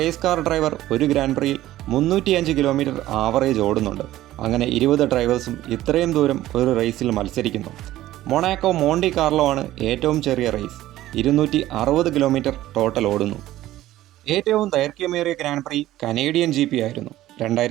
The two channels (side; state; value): left; quieter; 14.8 dB